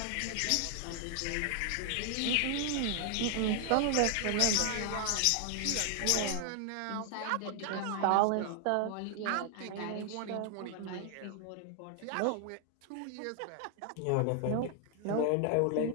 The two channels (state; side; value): different; both; correlation 0.00